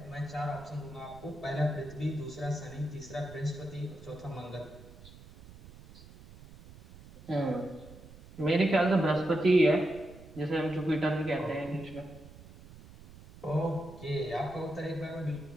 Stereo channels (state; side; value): noise; right; rumble, 19 dB below the sound